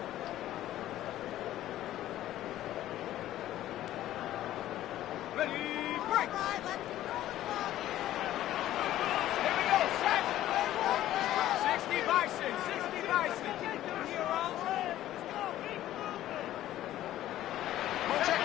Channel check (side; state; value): right; quieter; 13.6 dB